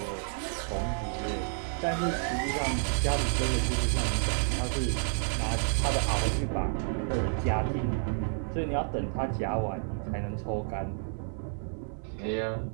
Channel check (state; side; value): silent; left; 58 dB below the other